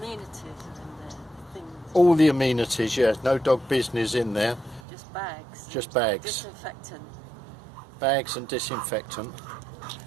in there, things. All the amenities, yeah. No dog business in there. Just bags. Just bags. Disinfectant. Bags and disinfectant.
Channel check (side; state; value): left; drops out; at 4.8 s